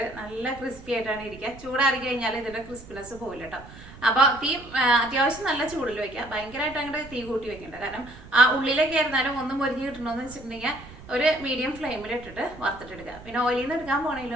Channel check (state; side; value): noise; right; rumble, 18 dB below the sound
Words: നല്ല ക്രിസ്പി ആയിട്ടാണ് ഇരിക്കുക. ചൂടാറി കഴിഞ്ഞാൽ ഇതിൻ്റെ ക്രിസ്പിനെസ് പോയില്ല കേട്ടോ. അപ്പോൾ തീ അത്യാവശ്യം നല്ല ചൂടിൽ വയ്ക്കുക. ഭയങ്കരമായിട്ട് അങ്ങോട്ട് തീ കൂട്ടി വെക്കണ്ട. കാരണം ആ ഉള്ളിലേക്ക് ആയിരുന്നാലും ഒന്നും പൊരിഞ്ഞ് കിട്ടണമെന്ന് വെച്ചിട്ടുണ്ടെങ്കിൽ ഒരു മീഡിയം ഫ്ലെയിമിൽ ഇട്ടിട്ട് വറുത്തിട്ടെടുക്കുക. പിന്നെ ഓയിലിൽ നിന്ന് എടുക്കാൻ